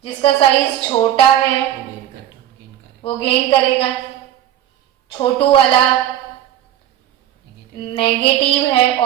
जिसका साइज छोटा है वो gain करेगा. वो गेन करेगा. छोटू वाला नेगेटिव है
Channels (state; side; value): quieter; left; 11.8 dB